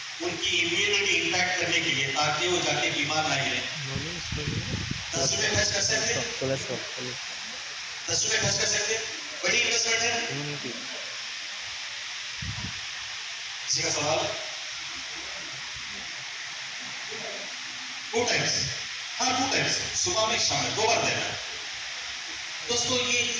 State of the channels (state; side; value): identical; both; correlation 1.00